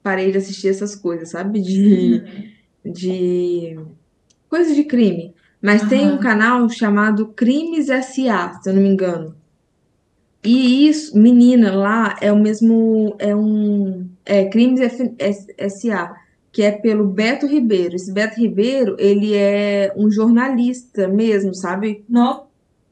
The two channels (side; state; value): both; identical; correlation 1.00